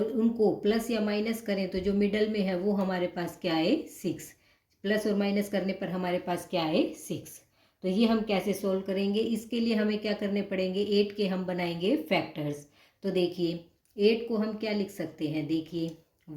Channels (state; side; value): identical; both; correlation 1.00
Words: उनको प्लस या माइनस करें तो जो मिडल में है वो हमारे पास क्या है, 6। प्लस और माइनस करने पर हमारे पास क्या है, 6। तो ये हम कैसे सोल्व करेंगे, इसके लिए हमें क्या करने पड़ेंगे, 8 के हम बनाएंगे फैक्टर्स। तो देखिए 8 को हम क्या लिख सकते हैं, देखिए